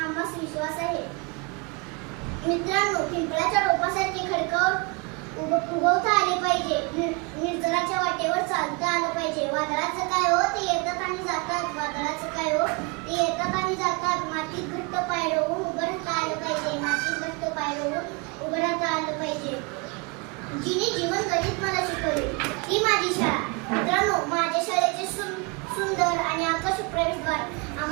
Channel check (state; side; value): quieter; left; 30.4 dB